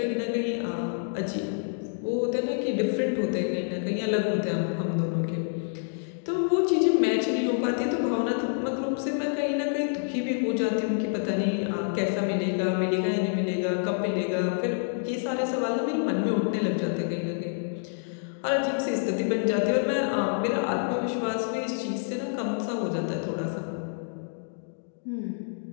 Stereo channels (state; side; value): silent; right; digital silence